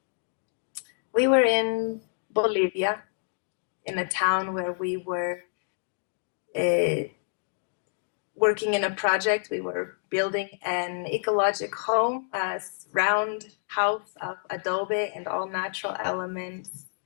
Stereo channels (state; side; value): silent; right; digital silence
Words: We were in Bolivia, in a town where we were working in a project. We were building an ecological home, a round house of adobe and all natural elements.